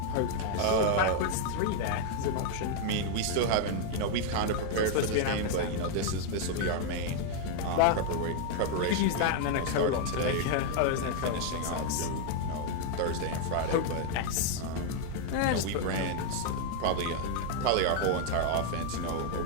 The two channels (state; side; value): different; both; correlation 0.00